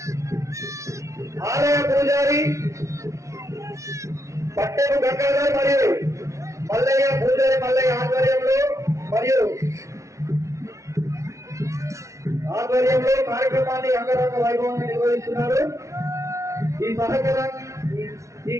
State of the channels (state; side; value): late; left; 0.14 ms